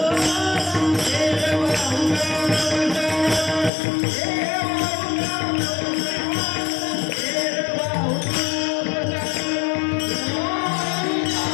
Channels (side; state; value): right; drops out; at 3.7 s